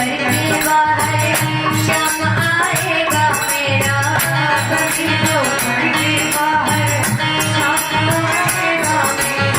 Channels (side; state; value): right; noise; hum, 29 dB below the sound